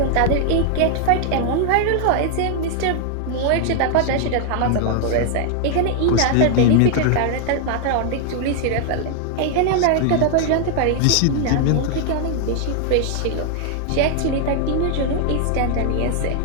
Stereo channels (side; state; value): both; different; correlation 0.00